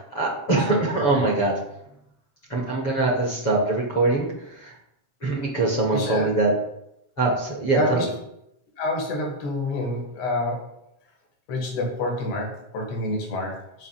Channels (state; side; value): late; right; 7.5 ms